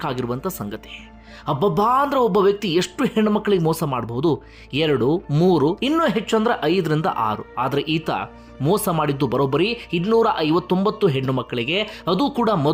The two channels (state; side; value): identical; both; correlation 1.00